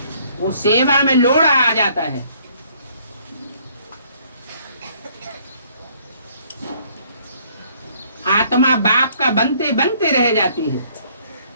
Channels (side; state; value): both; inverted; correlation -0.62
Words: वो सेवा में लोड़ा आ जाता है। आत्मा बाप का बनते बनते रह जाती है,